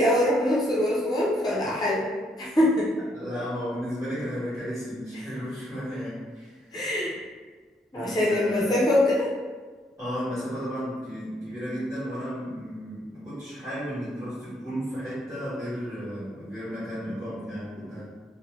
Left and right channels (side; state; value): both; normal; correlation 0.72